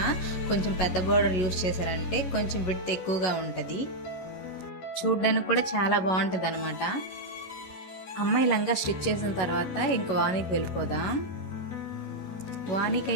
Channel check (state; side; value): late; right; 11 ms